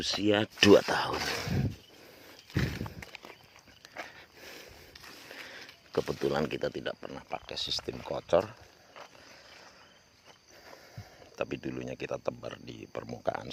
2 tahun. Kebetulan kita tidak pernah pakai sistem kocor, tapi dulunya kita tebar di permukaan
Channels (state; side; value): identical; both; correlation 1.00